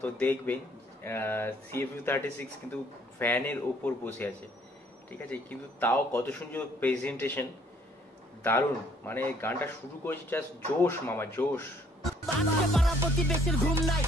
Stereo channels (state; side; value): normal; both; correlation 0.63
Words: তো দেখবেন CFU36 কিন্তু ভ্যানের ওপর বসে আছে। ঠিক আছে, কিন্তু তাও কত সুন্দর প্রেজেন্টেশন, দারুণ। মানে গানটা শুরু করেছি জাস্ট জোশ মামা, জোশ। পাড়া প্রতিবেশীর ঘুম নাই,